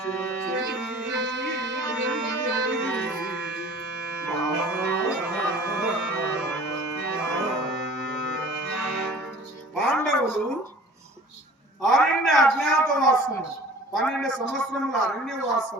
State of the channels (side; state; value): both; normal; correlation 0.46